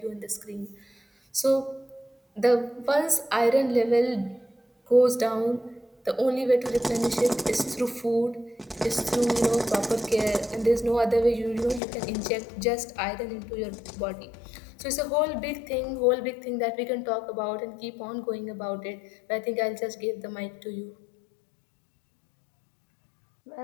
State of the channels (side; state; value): right; drops out; at 11.8 s